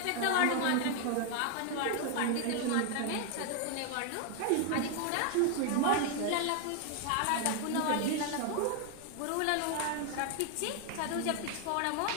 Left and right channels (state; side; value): different; both; correlation 0.01